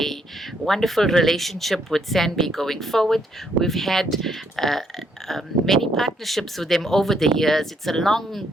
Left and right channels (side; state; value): both; normal; correlation 0.71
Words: wonderful relationship with SANBI going forward. We've had many partnerships with them over the years. It's a